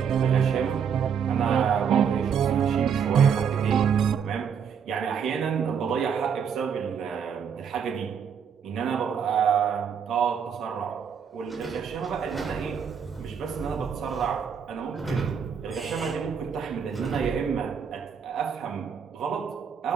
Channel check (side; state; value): left; quieter; 7.2 dB